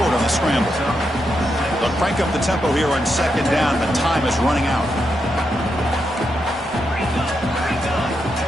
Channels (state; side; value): normal; both; correlation 0.84